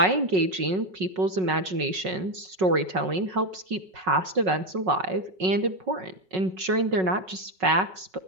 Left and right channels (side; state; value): left; late; 5.4 ms